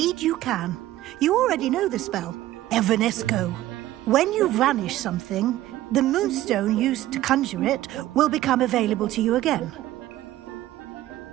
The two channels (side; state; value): left; quieter; 14.8 dB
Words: you can. You already know the spell, Evanesco. When you vanish something, the moonstone used to conjure it will become available to you again.